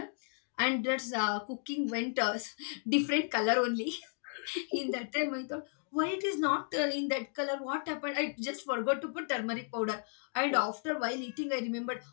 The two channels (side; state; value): right; silent; 55 dB below the other